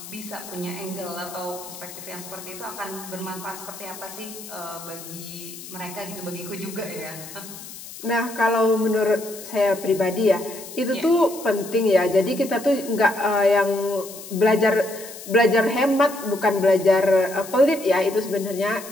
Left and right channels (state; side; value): noise; left; hiss, 14 dB below the sound